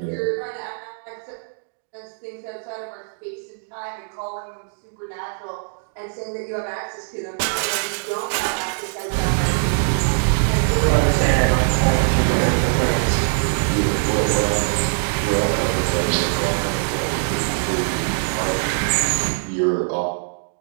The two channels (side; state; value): left; silent; digital silence